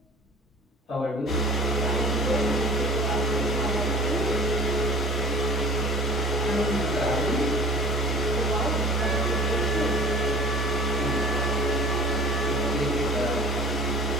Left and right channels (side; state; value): both; normal; correlation 0.44